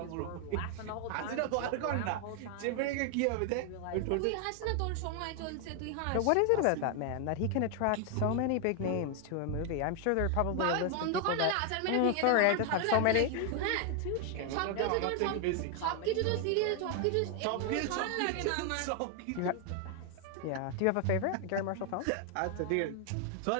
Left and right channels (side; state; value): both; different; correlation 0.00